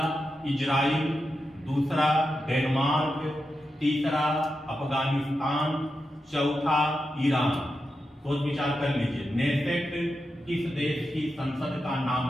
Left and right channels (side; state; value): both; normal; correlation 0.89